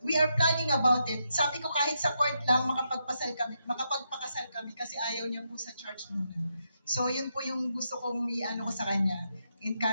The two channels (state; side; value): inverted; both; correlation -0.82